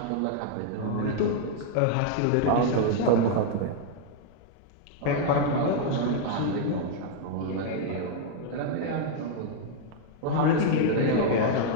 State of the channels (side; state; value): both; different; correlation -0.01